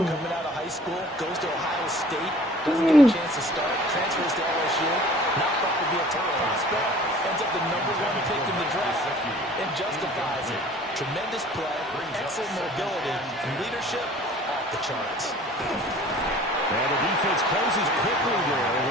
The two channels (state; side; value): normal; both; correlation 0.49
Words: out of high school, goes to Ohio State, doesn't get a chance to start, transfers to LSU, not thought to be a top prospect, ends up the #1 pick in the draft, and justifies it. Tremendous play, excellent mobility, and leadership off the charts. And the defense closes quickly there.